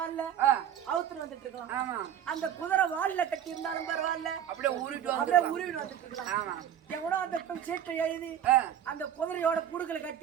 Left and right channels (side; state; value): left; quieter; 9.8 dB